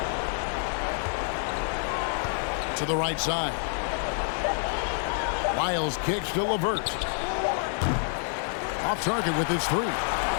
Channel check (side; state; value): right; silent; 60 dB below the other